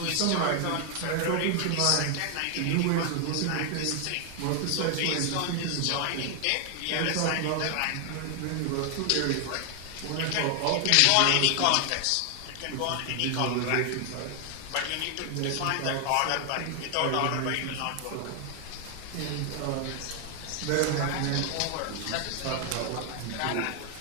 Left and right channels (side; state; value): both; different; correlation 0.00